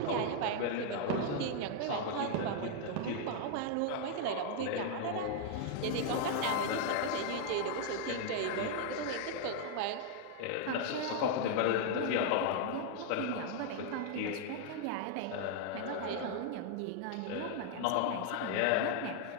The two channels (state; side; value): different; both; correlation 0.00